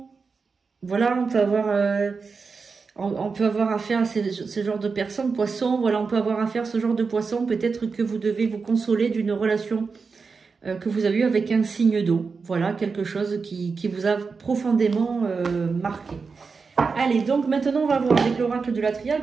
voilà, on peut avoir affaire à ce genre de personnes, poissons, voilà, on peut avoir affaire à ce genre de poissons. Peut-être que vous devez vous consoler d'une relation que vous avez eue avec un signe d'eau. Voilà, quelque chose qui vous a profondément marqué. Allez, donc maintenant on va voir avec l'oracle de la triade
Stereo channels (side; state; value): left; quieter; 4.9 dB